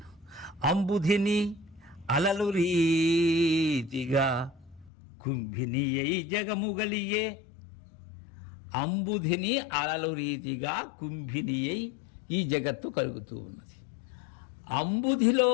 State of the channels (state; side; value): drops out; right; at 4.9 s